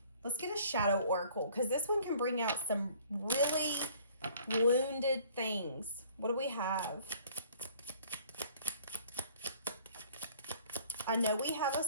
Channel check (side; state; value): both; inverted; correlation -0.55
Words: Let's get a shadow oracle, because this one can bring out some really wounded things. What do we have? I know we have a